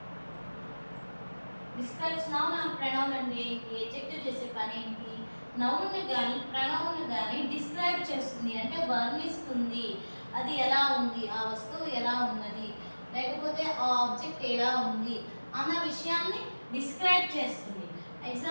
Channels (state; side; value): inverted; both; correlation -1.00